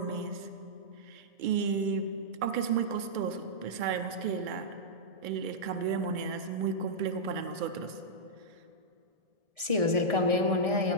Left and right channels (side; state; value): left; late; 1.6 ms